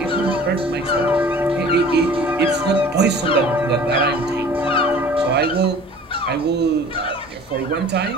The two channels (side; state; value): both; normal; correlation 0.46